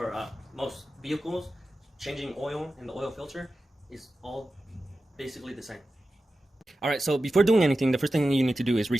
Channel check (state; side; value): normal; both; correlation 0.93